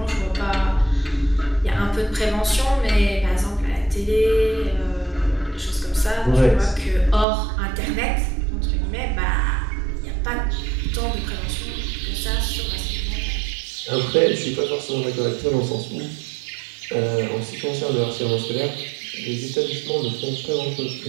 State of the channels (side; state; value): left; drops out; at 7.2 s